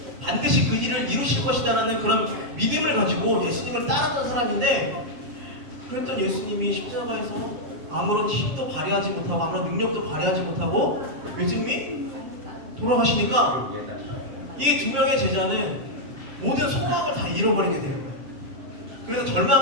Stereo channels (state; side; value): late; left; 7.3 ms